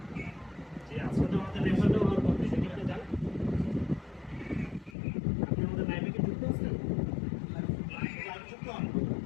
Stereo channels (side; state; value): right; drops out; at 5.0 s